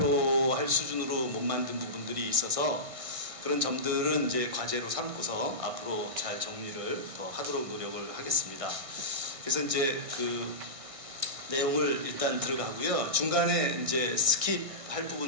수준으로 못 만든 부분들이 있어서 그런 점들은 이제 과제로 삼고서 앞으로 잘 정리를 더 하도록 노력을 하겠습니다. 그래서 이제 그 내용을 일단 들어가고요. 중간에 이제 스킵할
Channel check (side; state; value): left; late; 1.6 ms